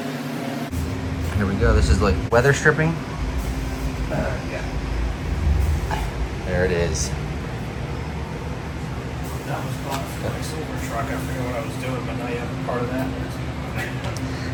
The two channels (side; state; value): both; identical; correlation 1.00